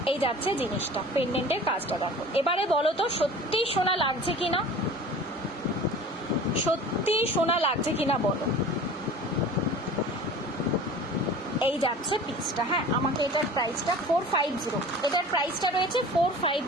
এই যাচ্ছে জিনিসটা, পেন্ডেন্টের কাজটা দেখো। এবারে বলো তো সত্যি সোনা লাগছে কিনা, সত্যি সোনা লাগছে কিনা বলো। এই যাচ্ছে পিসটা। হ্যাঁ, আমাকে এটার প্রাইসটা 450, এটার প্রাইসটা রয়েছে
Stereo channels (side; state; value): both; normal; correlation 0.41